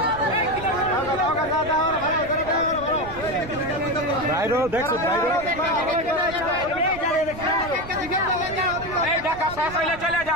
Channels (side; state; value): right; noise; rumble, 14 dB below the sound